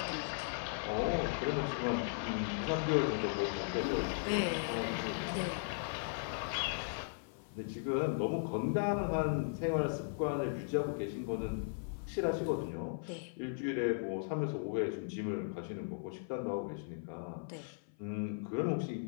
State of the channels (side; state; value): right; silent; 53 dB below the other